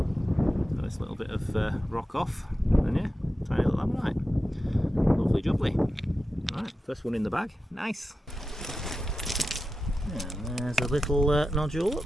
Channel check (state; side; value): normal; both; correlation 0.92